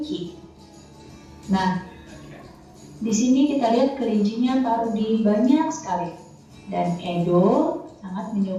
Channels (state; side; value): identical; both; correlation 1.00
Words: Nah, di sini kita lihat kelincinya Pak Rudi banyak sekali. Dan Edo sangat